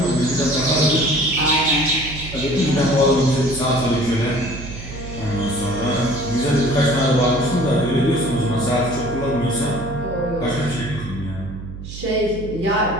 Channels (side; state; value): right; noise; hum, 11 dB below the sound